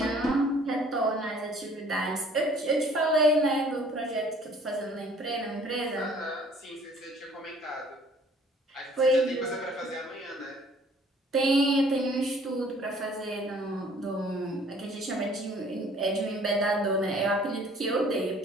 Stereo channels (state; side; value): normal; both; correlation 0.56